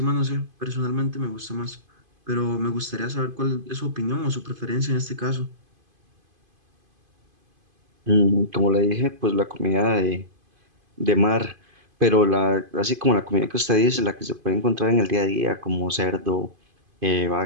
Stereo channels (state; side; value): late; left; 2.5 ms